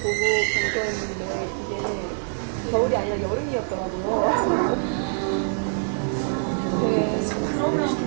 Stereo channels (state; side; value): silent; left; digital silence